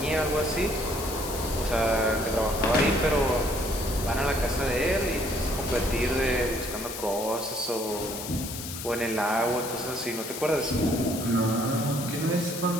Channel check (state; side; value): noise; left; hiss, 8 dB below the sound